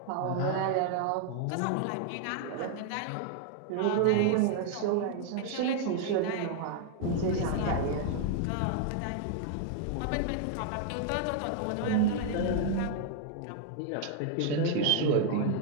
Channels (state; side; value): different; both; correlation 0.00